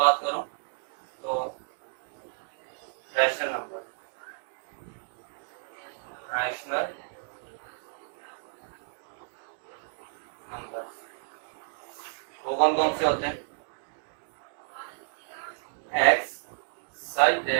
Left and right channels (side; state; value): left; silent; digital silence